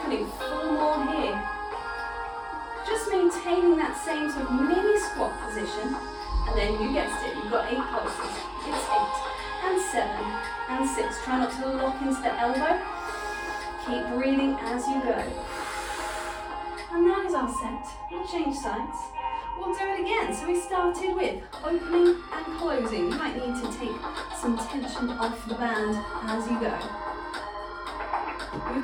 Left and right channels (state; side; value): identical; both; correlation 1.00